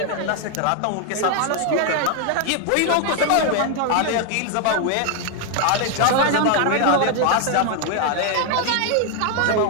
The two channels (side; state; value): both; different; correlation 0.00